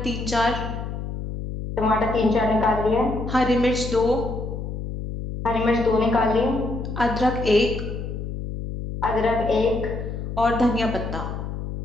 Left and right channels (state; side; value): noise; left; hum, 6 dB below the sound